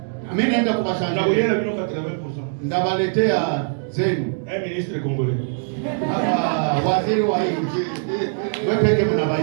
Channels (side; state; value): left; silent; 64 dB below the other